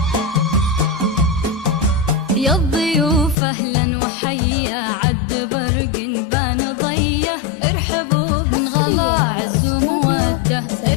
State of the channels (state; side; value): drops out; right; at 3.4 s